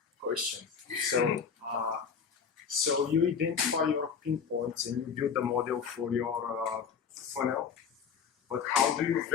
So you identify your pinpoints and you build a model for your funnel, but how do you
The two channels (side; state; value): right; quieter; 6.6 dB